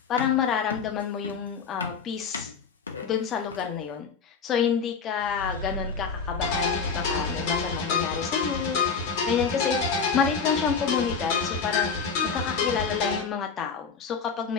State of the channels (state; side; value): quieter; right; 5.8 dB